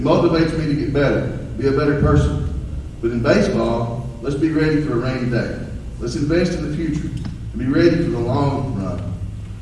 motivates me to get better, be a better person. But in baseball, let's be ready for a rainy day. Let's invest in the future and be ready for the long run.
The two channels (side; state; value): both; identical; correlation 1.00